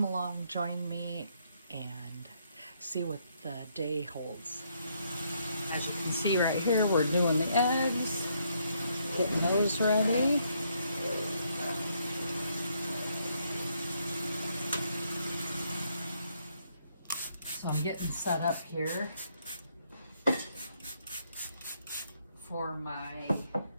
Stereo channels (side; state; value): both; inverted; correlation -0.73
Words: along, join me, and see what the day holds. As you can see right here, we're doing the eggs, getting those ready. So I'm getting set up here for my